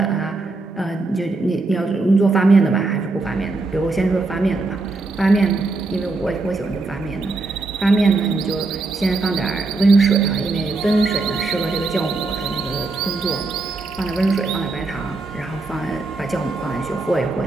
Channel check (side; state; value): left; quieter; 3.4 dB